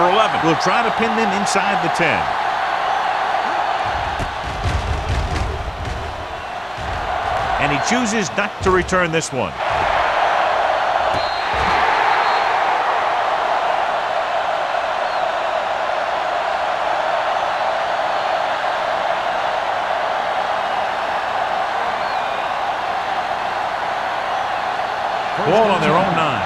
11 will try to pin them inside the 10. And he chooses not to return this one. Ball on their own 9.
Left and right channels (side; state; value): both; identical; correlation 1.00